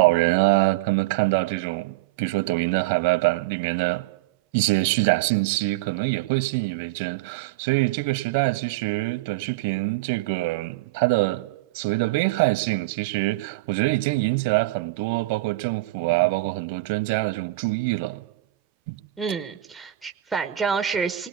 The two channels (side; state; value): left; quieter; 17.4 dB